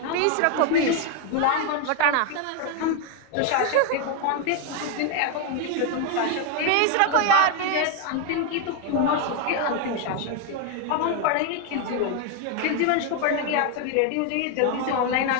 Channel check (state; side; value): different; both; correlation 0.01